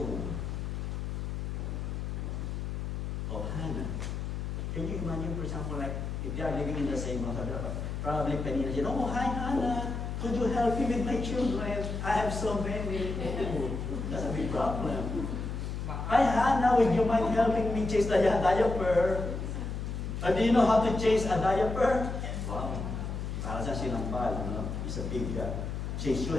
of Hannah, can you imagine, for example, like if they are living in the same house, probably Penina said, oh, hi Hannah, could you help me with my children? I have so many. Oh, that's a big problem. Hi, Hannah, would you mind helping me change the diaper? Do you know how to change a diaper? Wow. Para sa sinampal, it's a big change. You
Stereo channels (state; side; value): noise; left; hum, 4 dB below the sound